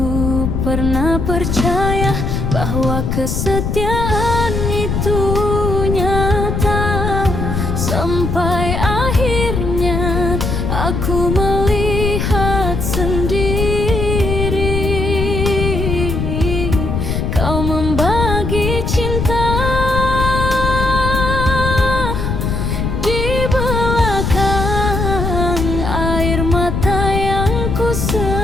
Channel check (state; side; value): noise; left; rumble, 1 dB below the sound